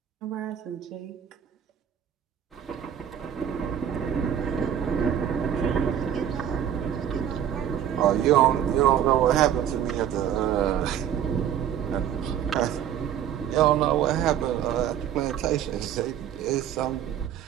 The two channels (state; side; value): quieter; left; 9.7 dB